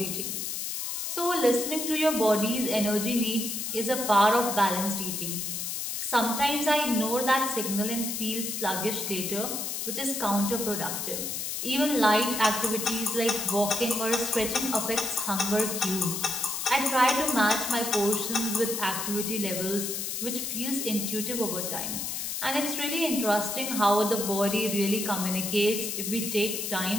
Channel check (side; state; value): left; noise; hiss, 3 dB below the sound